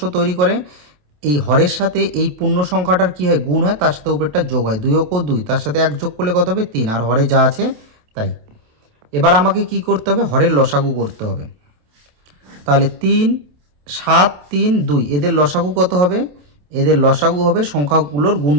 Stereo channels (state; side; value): late; left; 27 ms